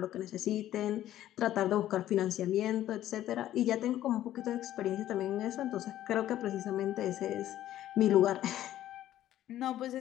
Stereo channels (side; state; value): right; quieter; 12.9 dB